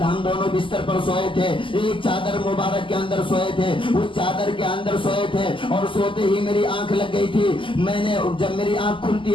ہم دونوں بستر پر سوئے تھے, ایک چادر مبارک کے اندر سوئے تھے, اس چادر کے اندر سوئے تھے اور سوتے ہی میری آنکھ لگ گئی تھی. میں نے جب میری آنکھ کھلتی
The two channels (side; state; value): right; late; 0.25 ms